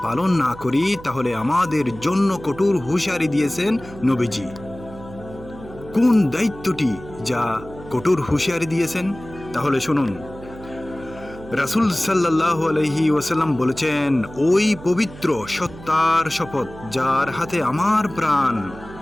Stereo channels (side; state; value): right; noise; hum, 16 dB below the sound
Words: পালন না করি তাহলে আমাদের জন্য কঠোর হুঁশিয়ারি দিয়েছেন নবীজি। কোন দায়িত্বটি যা কঠোর হুঁশিয়ারি দিয়েছেন? তাহলে শুনুন। রাসূল সাল্লাল্লাহু আলাইহি ওয়াসাল্লাম বলেছেন, ওই পবিত্র সত্তার শপথ যার হাতে আমার প্রাণ,